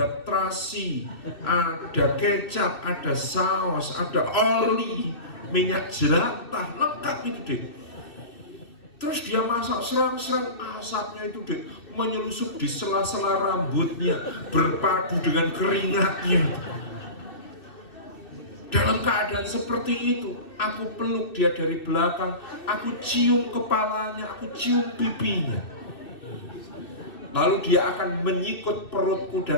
terasi, ada kecap, ada saus, ada oli, minyak jelantah, lengkap itu Dek. Terus dia masak serang-serang, asapnya itu Dek menyelusup di sela-sela rambutnya, berpadu dengan keringatnya. Dalam keadaan seperti itu, aku peluk dia dari belakang, aku cium kepalanya, aku cium pipinya. Lalu dia akan menyikut perutku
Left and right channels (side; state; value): right; late; 2.6 ms